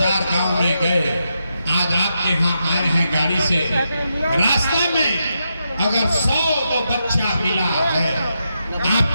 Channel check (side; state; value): both; inverted; correlation -0.84